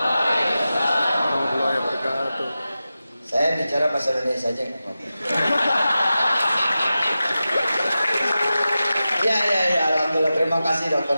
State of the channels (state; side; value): inverted; both; correlation -0.93